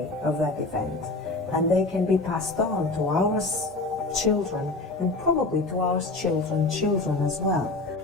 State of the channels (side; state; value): right; quieter; 3.2 dB